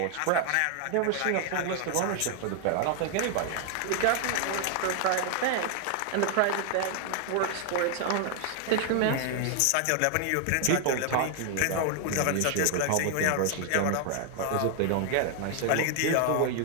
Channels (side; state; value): both; different; correlation 0.00